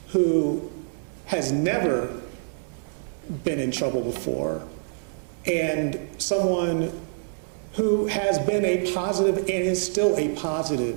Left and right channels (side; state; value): left; silent; 61 dB below the other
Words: who has never been in trouble before, and someone who has been a positive and is still a